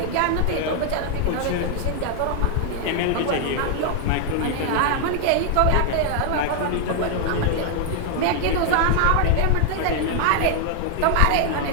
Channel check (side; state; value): both; different; correlation 0.00